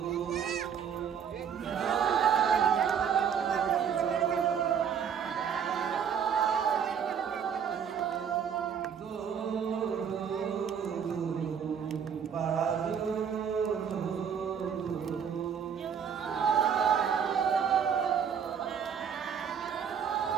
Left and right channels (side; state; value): left; quieter; 7.6 dB